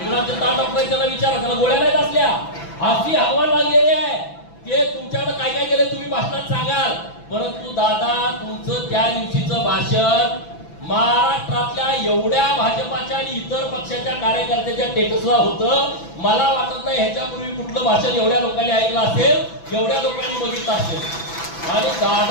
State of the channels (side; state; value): right; late; 6.0 ms